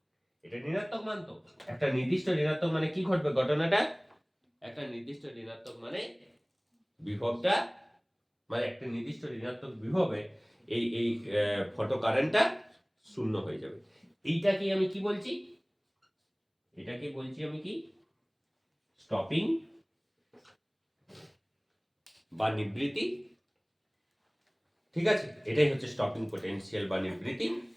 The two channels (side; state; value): both; identical; correlation 1.00